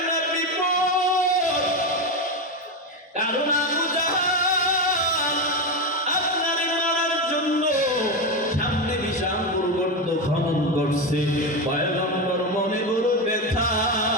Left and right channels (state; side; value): normal; both; correlation 0.14